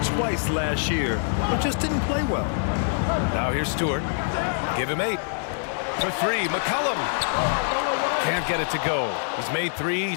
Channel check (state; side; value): silent; right; 62 dB below the other